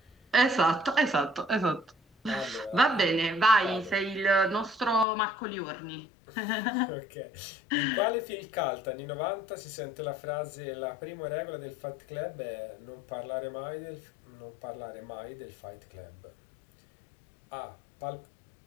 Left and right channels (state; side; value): drops out; right; at 5.1 s